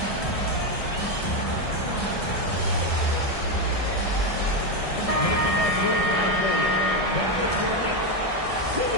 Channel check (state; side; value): late; right; 1.6 ms